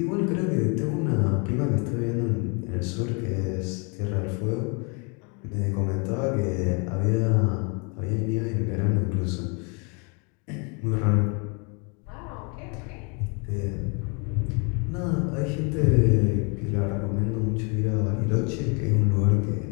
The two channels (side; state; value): right; quieter; 34.2 dB